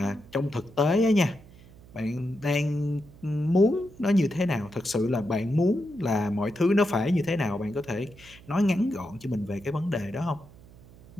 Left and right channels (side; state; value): right; noise; hum, 22 dB below the sound